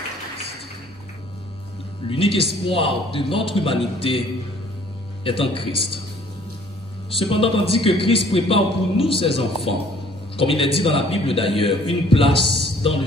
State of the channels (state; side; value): normal; both; correlation 0.57